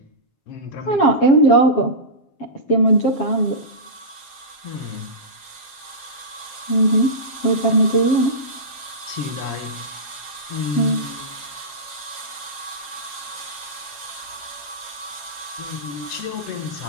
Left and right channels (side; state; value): right; late; 7.4 ms